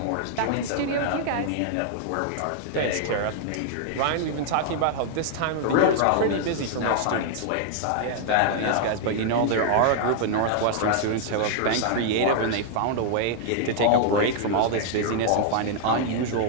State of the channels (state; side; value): different; both; correlation 0.00